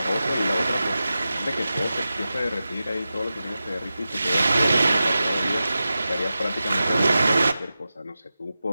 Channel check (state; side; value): inverted; both; correlation -0.93